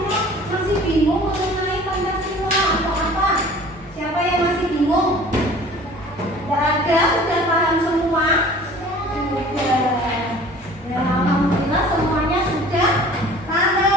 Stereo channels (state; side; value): normal; both; correlation 0.47